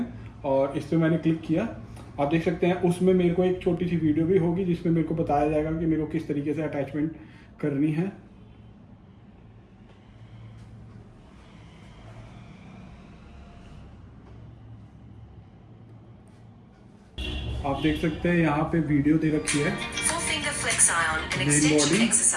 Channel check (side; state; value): both; identical; correlation 1.00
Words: और इस पर मैंने क्लिक किया, आप देख सकते हैं। उसमें मेरे को एक छोटी सी वीडियो भी होगी जिसमें मेरे को बताया जाएगा कि मेरे को किस तरीके से अटैचमेंट करनी है। आप देख सकते हैं यहाँ पे वीडियो दे रखी है। Main body,